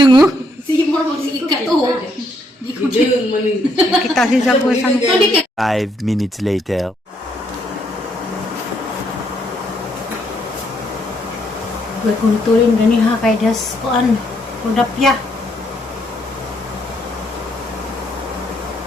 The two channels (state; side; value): normal; both; correlation 0.73